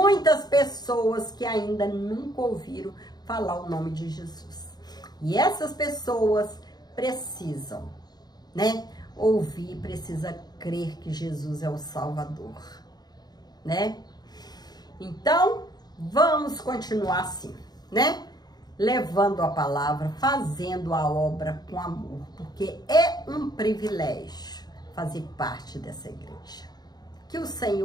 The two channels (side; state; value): right; late; 0.20 ms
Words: pessoas que ainda nunca ouviram falar o nome de Jesus. E essas pessoas precisam, né? Ouvir, precisa crer que Jesus é o Salvador, né? Então, vamos continuar assim, né? Levando a palavra, fazendo a obra com amor, porque é um privilégio fazer parte dessa igreja. Que o